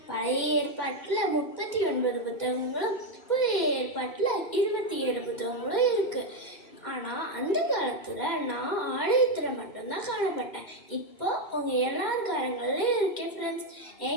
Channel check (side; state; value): right; late; 2.2 ms